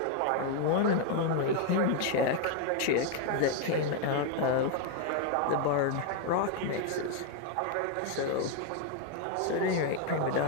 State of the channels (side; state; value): both; different; correlation 0.01